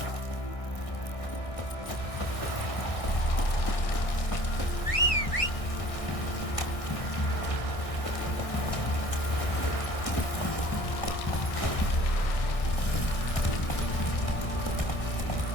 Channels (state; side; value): late; right; 1.6 ms